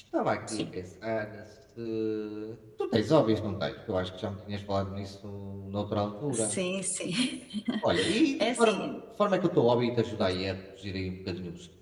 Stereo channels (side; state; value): both; identical; correlation 1.00